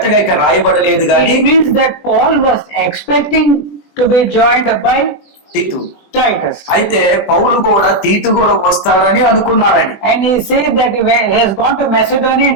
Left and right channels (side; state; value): right; late; 20 ms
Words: ఇక్కడ రాయబడలేదు కానీ It means that Paul was expecting to be joined by తీతు, Titus. అయితే పౌలు కూడా తీతు కూడా వస్తారని అనుకున్నారని. And he said that he has gone to Macedonia